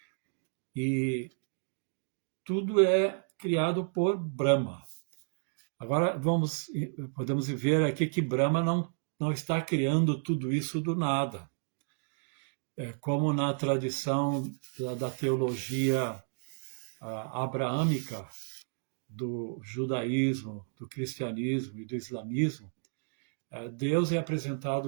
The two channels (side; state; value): left; silent; digital silence